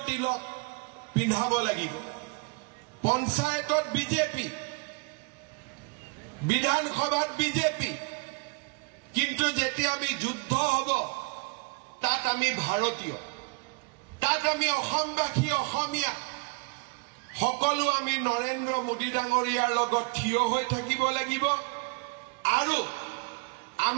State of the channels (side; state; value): left; quieter; 32.2 dB